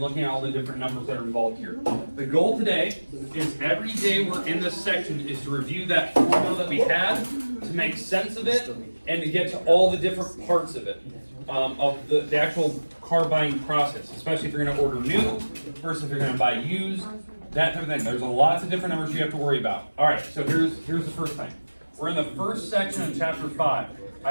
looking at all the different numbers that are involved here. The goal today is every day we're in this section is to review that formula that we had, to make sense of it, and to get to all the different parts of it, of the actual car buying process, especially if you're going to order new versus if you're going to buy used, that type of thing. There's lots of different numbers you have to worry about. All right, so here's the first thing. We're in the first section of chapter 5.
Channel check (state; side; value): inverted; both; correlation -1.00